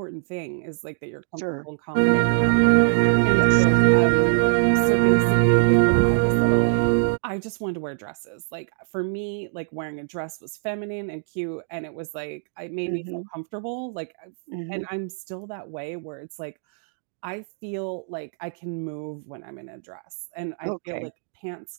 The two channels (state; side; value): silent; left; 63 dB below the other